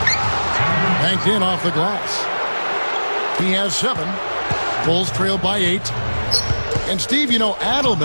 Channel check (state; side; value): inverted; both; correlation -1.00